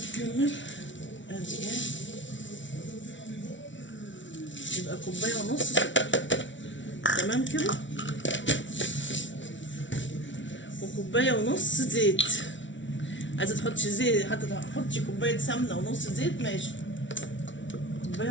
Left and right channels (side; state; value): right; late; 0.55 ms